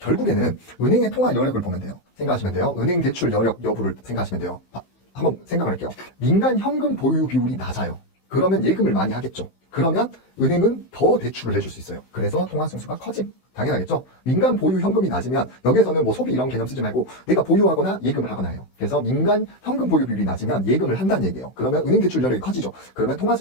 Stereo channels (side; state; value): right; late; 16 ms